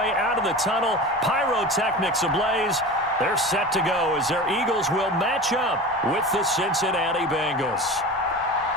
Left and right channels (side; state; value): both; normal; correlation 0.32